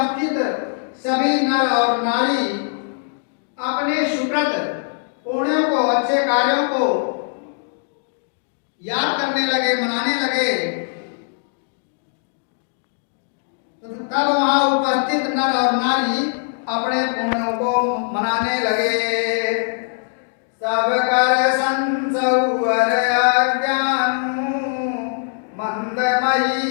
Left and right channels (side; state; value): right; silent; digital silence